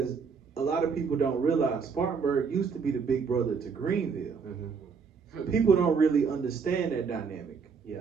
a lot of people don't realize Spartanburg used to be the big brother to Greenville. Mm-hmm. People don't really understand that dynamic.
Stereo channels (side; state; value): left; quieter; 5.6 dB